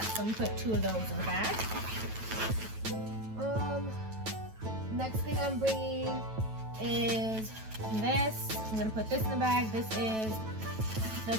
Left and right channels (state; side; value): late; left; 9.1 ms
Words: I'm gonna put 2 of those in the bag. Next thing I'm bringing is this. I'm gonna put this in the bag. This is the